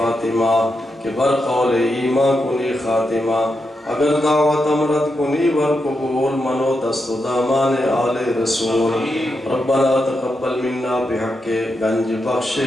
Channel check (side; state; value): both; normal; correlation 0.85